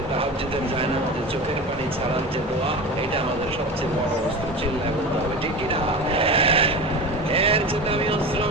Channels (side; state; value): both; normal; correlation 0.29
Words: তাহাজ্জুদের জায়নামাজে চোখের পানি ছাড়ার যে দোয়া, এটা আমাদের সবচেয়ে বড় অস্ত্র। চিল্লায় বলতে হবে ঠিক কি না? এর চেয়ে দামি অস্ত্র